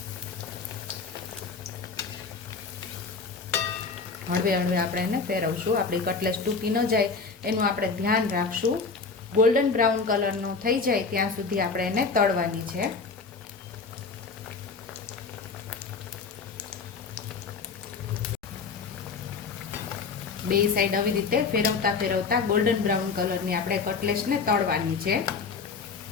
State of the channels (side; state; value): right; quieter; 4.8 dB